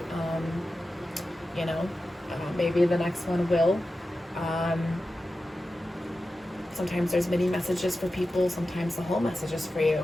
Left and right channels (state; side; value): normal; both; correlation 0.93